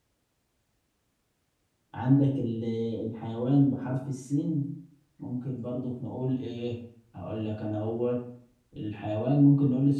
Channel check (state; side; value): identical; both; correlation 1.00